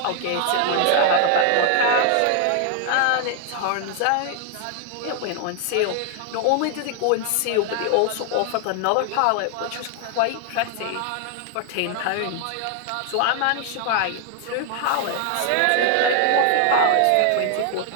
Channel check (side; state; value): both; different; correlation 0.00